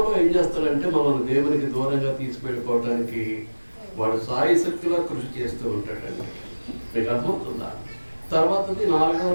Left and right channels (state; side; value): inverted; both; correlation -1.00